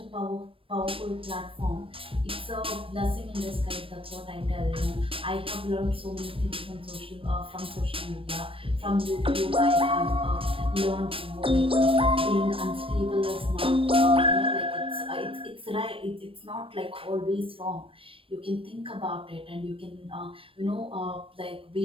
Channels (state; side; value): late; left; 0.26 ms